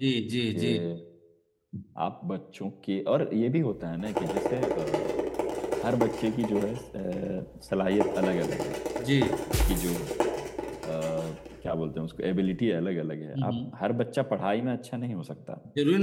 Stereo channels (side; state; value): both; identical; correlation 1.00